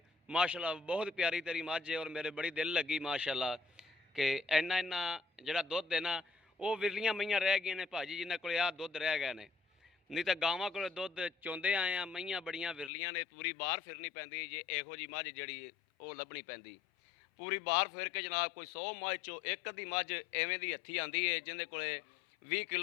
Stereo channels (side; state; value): right; drops out; at 12.9 s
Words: ਮਾਸ਼ਾਅੱਲਾ ਬਹੁਤ ਪਿਆਰੀ ਤੇਰੀ ਮੱਝ ਹੈ ਔਰ ਮੇਰੇ ਬੜੀ ਦਿਲ ਲੱਗੀ ਮਾਸ਼ਾਅੱਲਾ ਕਿ ਇੰਨਾ ਜਿਹੜਾ ਦੁੱਧ ਹੈ ਨਾ, ਉਹ ਵਿਰਲੀਆਂ ਮਈਆਂ ਰਹਿ ਗਈਆਂ ਨੇ ਭਾਜੀ ਜਿਨ੍ਹਾਂ ਕੋਲ ਆਹ ਦੁੱਧ ਰਹਿ ਗਏ ਨੇ। ਨਹੀਂ ਤਾਂ ਗਾਵਾਂ ਕੋਲ ਦੁੱਧ ਚੋਂਦੇ ਆਏ ਆ, ਮਈਆਂ ਬੜੀਆਂ ਵਿਰਲੀਆਂ ਨੇ, ਪੂਰੀ ਬਾਹਰ ਫਿਰਨੀ ਪੈਂਦੀ ਜੇ ਇਹੋ ਜੀ ਮੱਝ ਜਿਹੜੀ ਉਹ ਲੱਭਣੀ ਪੈਂਦੀ। ਪੂਰੀ ਬਾਹਰ ਫਿਰ ਕੇ ਜਨਾਬ ਕੋਈ 100 ਮੱਝ ਚੋਂ ਇੱਕ ਅੱਧੀ ਮੱਝ ਐਵੇਂ ਦੀ ਹੱਥੀ ਆਂਦੀ ਹੈ ਜਿਹਦੇ ਕੋਲੇ 20